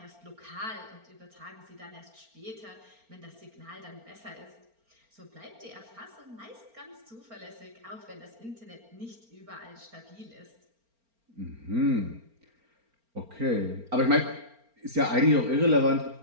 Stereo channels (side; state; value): left; late; 4.4 ms